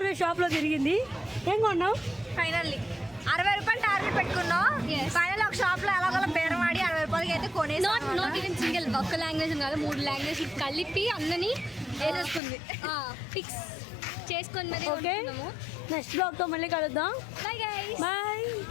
షాప్లో తిరిగింది. ఏం కొన్నావు? ఫైనల్లీ 60 రూపాయలు టార్గెట్ పెట్టుకున్నాం. ఫైనల్ ఒక షాప్ లో ఎలాగోలా బేరం ఆడి 60 రూపాయలకి అయితే కొనేసి నాట్ ఈవెన్ సింగిల్ ఒక్క లాంగ్వేజ్ కాదు 3 లాంగ్వేజ్ కలిపి అందరినీ వేసేసుకుంది. ఫిక్స్ చేసుకొని మరి ఓకే నెక్స్ట్ బ్లాగ్తో మళ్ళీ కలుద్దాం. Bye guys. బాయ్.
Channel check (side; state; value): right; drops out; at 12.4 s